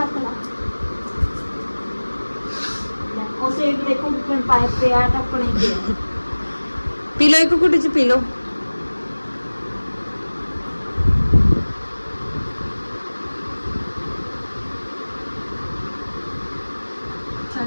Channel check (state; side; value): inverted; both; correlation -1.00